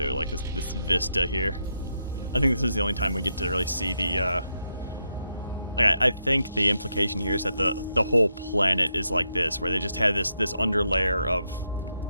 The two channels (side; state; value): both; inverted; correlation -0.82